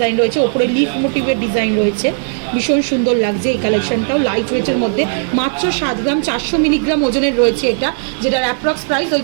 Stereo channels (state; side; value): silent; left; digital silence